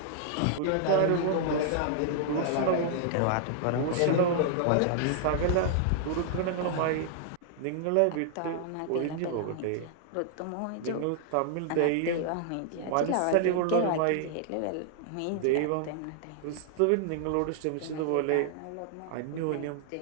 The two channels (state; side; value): different; both; correlation -0.01